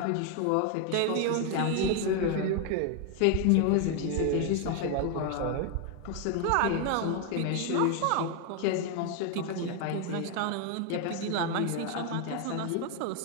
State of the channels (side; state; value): both; different; correlation 0.01